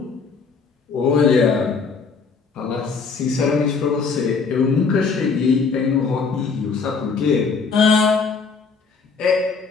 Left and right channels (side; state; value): right; quieter; 5.0 dB